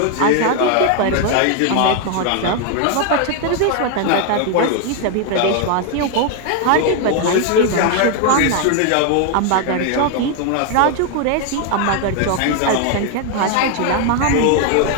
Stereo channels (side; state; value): both; different; correlation 0.00